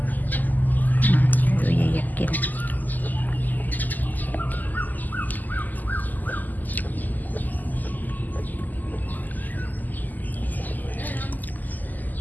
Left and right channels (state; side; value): late; right; 0.084 ms